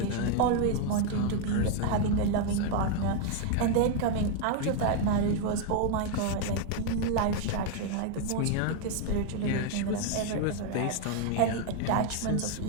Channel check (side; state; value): both; different; correlation 0.01